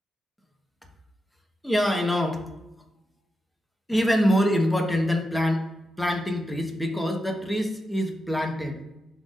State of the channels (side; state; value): both; normal; correlation 0.88